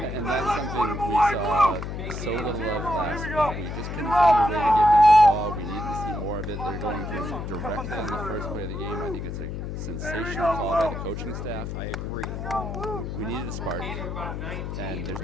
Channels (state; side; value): noise; left; hum, 5 dB below the sound